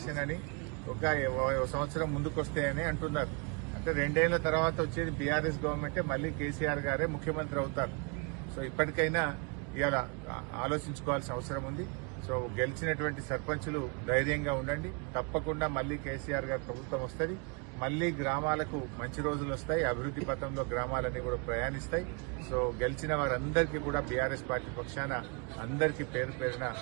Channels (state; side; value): quieter; left; 33.5 dB